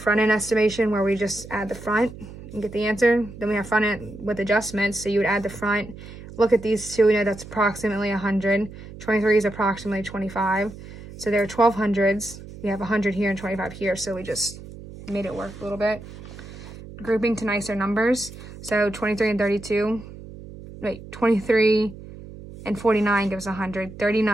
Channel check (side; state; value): right; noise; hum, 15 dB below the sound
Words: end estimation where we just add the front and get the answer. Then we have front end with adjustments. So you would add the front, look at these two, we know that's approximately 100. 23 is approximately 25. So there are 1200s. We have 100 here and 25 here. So we just made it work a little bit. Grouping to nicer numbers. So 23 and 32. Wait, 23 and 49 gives 100.